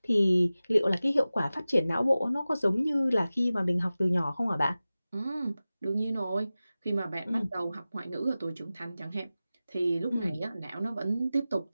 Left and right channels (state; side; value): inverted; both; correlation -0.96